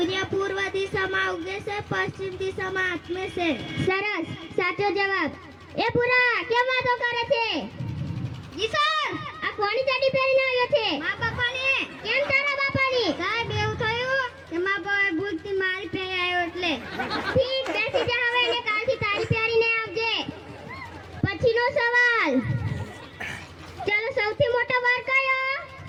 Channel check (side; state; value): both; identical; correlation 1.00